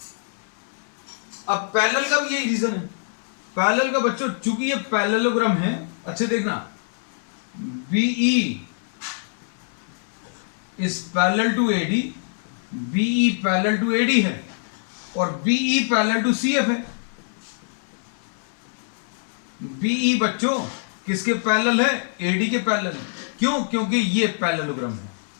अब पैरेलल का भी यही रीजन है। पैरेलल का बच्चों चूंकि ये पैरेललोग्राम है, अच्छे देखना, BE is parallel to AD, BE parallel to AD है और BE parallel to CF है। BE बच्चों किसके पैरेलल है? AD के पैरेलल। क्यों? क्योंकि ये पैरेललोग्राम है।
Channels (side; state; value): right; silent; digital silence